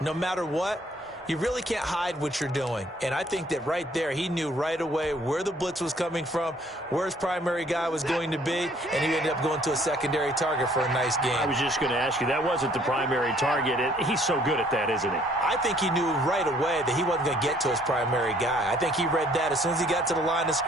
matter what, You really can't hide what you're doing. And I think that right there, he knew right away where the blitz was coming from, where his primary guy was going to be, and he ended up going to a secondary target for a nice game. I was just going to ask you, that wasn't the primary target. He's so good at that, isn't he? I think he knew right away that he wasn't going to get to his primary guy. I think he read that as soon as he got to the line of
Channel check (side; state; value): both; normal; correlation 0.61